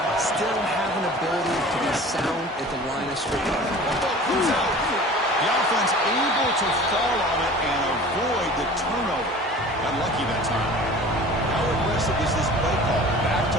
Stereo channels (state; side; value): normal; both; correlation 0.42